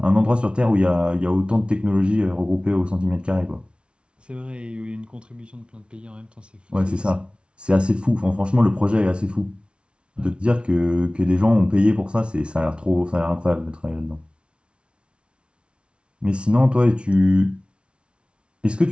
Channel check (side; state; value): left; late; 0.058 ms